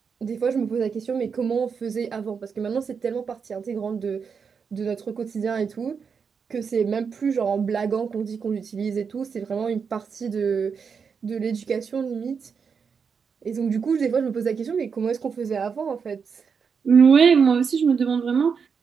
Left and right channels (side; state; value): left; quieter; 6.1 dB